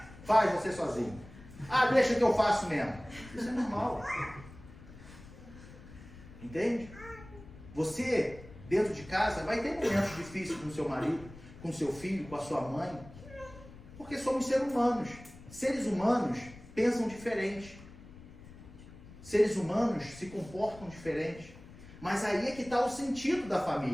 Faz você sozinho. Deixa que eu faço mesmo. Isso é normal. Entende? Você, dentro de casa, vai ter momentos difíceis com o seu marido, com o seu filho, com a sua mãe, porque somos seres humanos. Seres humanos pensam diferente. Seres humanos se comportam diferente. Mas aí é que está o sentido da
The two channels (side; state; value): left; noise; rumble, 18 dB below the sound